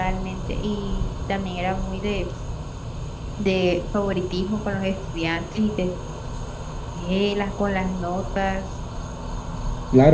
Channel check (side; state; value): both; identical; correlation 1.00